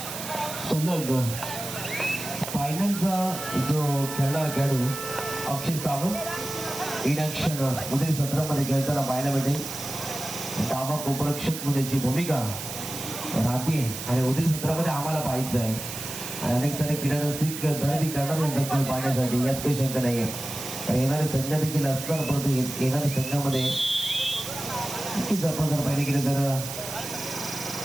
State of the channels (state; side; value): noise; right; hiss, 8 dB below the sound